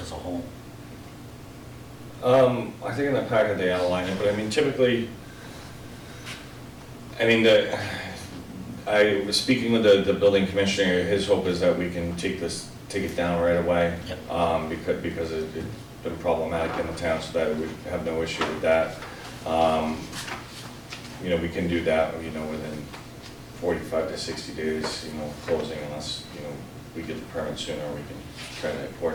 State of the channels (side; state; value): both; identical; correlation 1.00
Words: a whole? I think in the packet they outline it, but I mean, typically, I was speaking with the building commissioner. His hope is that we can take it down right away. Yep. Because it's been problematic in the town, so that we have no issue with that. We can do that, within 45 to 60 days, closing, unless, we get the permit sooner, we can try to